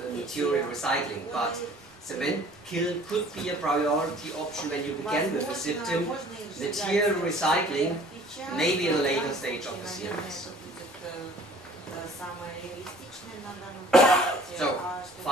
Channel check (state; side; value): normal; both; correlation 0.52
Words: material recycling, but cement kiln could be a priority option when you begin with the system. Material recycling maybe in a later stage of the CMS. So